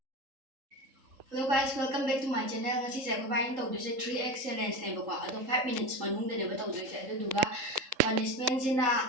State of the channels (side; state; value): left; late; 3.7 ms